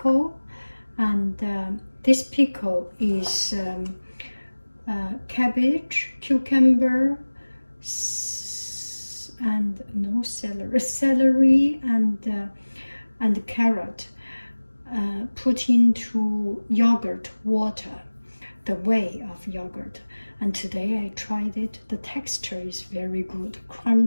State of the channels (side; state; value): both; inverted; correlation -1.00